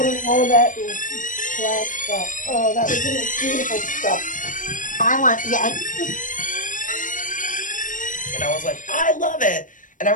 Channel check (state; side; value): late; right; 0.38 ms